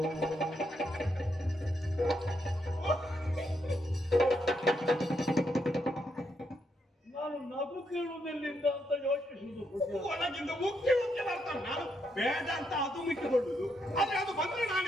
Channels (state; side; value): normal; both; correlation 0.79